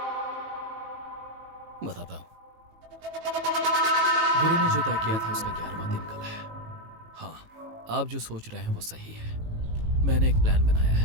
बताता हूँ। गुरु ने जो तय किया था उसका 11वां दिन कल है। हाँ, आप जो सोच रहे हैं वो सही है। मैंने एक प्लान बनाया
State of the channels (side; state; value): left; late; 18 ms